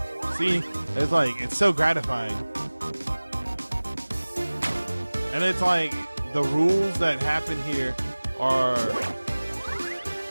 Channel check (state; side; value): inverted; both; correlation -1.00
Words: See? It's like, it's so gratifying. And it's like, the rules that happen here are